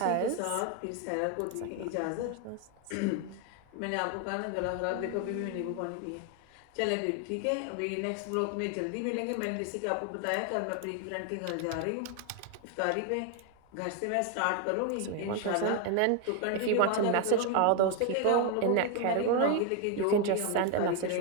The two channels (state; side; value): different; both; correlation 0.01